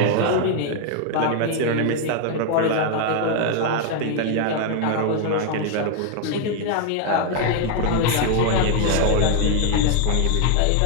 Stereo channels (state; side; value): different; both; correlation 0.00